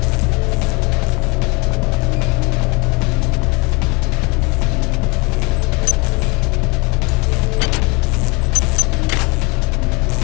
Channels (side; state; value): right; quieter; 28.5 dB